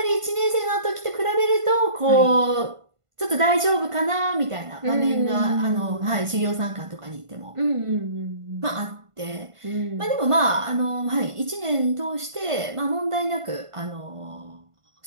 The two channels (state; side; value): late; left; 1.5 ms